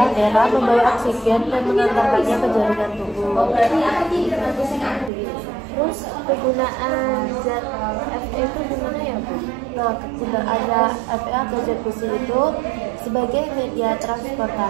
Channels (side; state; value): left; drops out; at 5.1 s